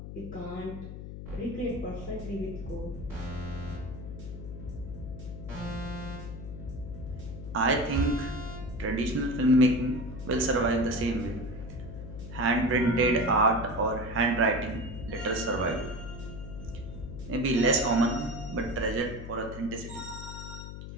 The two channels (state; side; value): noise; left; hum, 10 dB below the sound